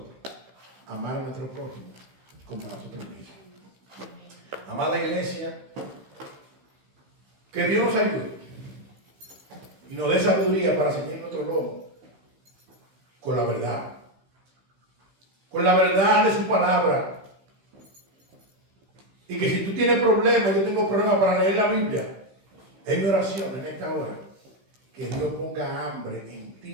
a amar a nuestro prójimo como a nosotros mismos. Amada iglesia, que Dios nos ayude y nos dé sabiduría para seguir nuestro lomo con la verdad de su palabra. Y que si tú tienes problemas, yo tengo problemas para leer la Biblia, es mi oración en esta hora, que Dios ponga hambre en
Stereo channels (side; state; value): left; late; 15 ms